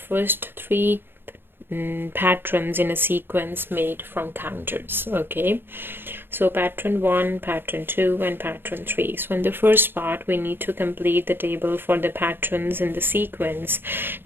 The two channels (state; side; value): late; left; 0.10 ms